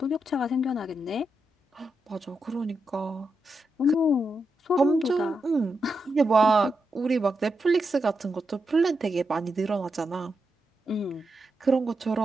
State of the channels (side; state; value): both; normal; correlation 0.85